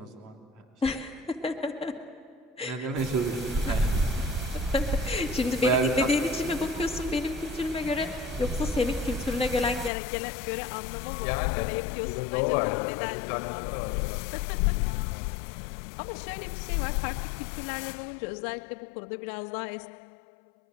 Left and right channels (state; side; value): drops out; right; at 9.9 s